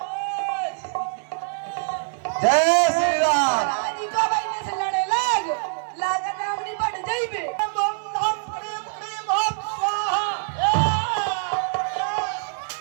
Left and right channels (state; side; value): silent; left; 62 dB below the other